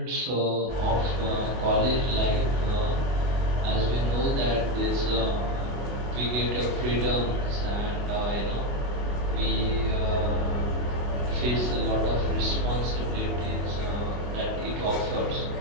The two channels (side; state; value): left; late; 25 ms